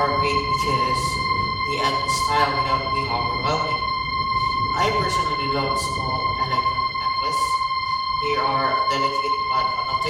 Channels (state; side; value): identical; both; correlation 1.00